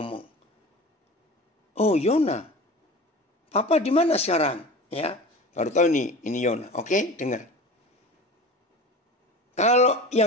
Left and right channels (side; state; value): both; normal; correlation 0.35